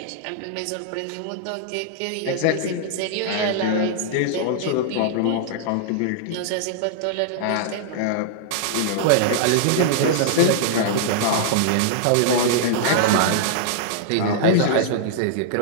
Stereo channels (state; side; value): different; both; correlation -0.01